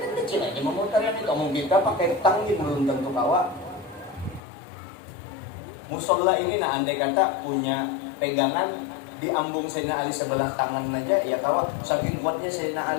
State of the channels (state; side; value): drops out; right; at 4.4 s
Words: kecil aja memutarnya itu. Kamu kita pakai tangi belum tentu kawa. Musola ini nah andai kata punya pegangan diambung Sayyidina Ali sebelah tangan aja ya kawa, saking kuatnya Sayyidina